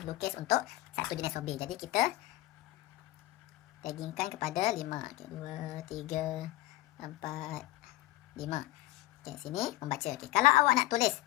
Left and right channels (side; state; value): right; quieter; 17.0 dB